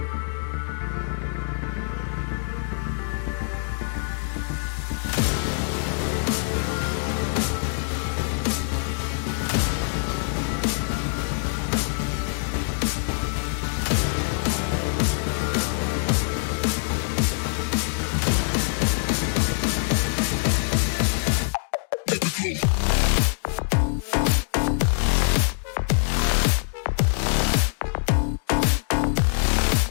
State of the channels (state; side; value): silent; right; digital silence